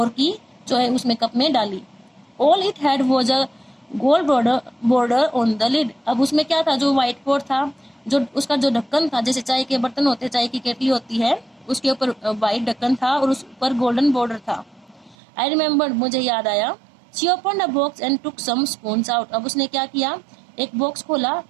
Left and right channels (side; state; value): left; drops out; at 15.2 s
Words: की, जो है उसमें कप में डाली। All it had was a gold border on the lid, अब उसमें क्या था, जो व्हाइट पॉट था, जो उसका जो ढक्कन था, जैसे चाय के बर्तन होते, चाय की केटली होती है, उसके ऊपर व्हाइट ढक्कन था और उस पर गोल्डन बॉर्डर था। आई रिमेम्बर्ड, मुझे याद आया। She opened a box and took some spoons out, अब उसने क्या किया, एक बॉक्स खोला,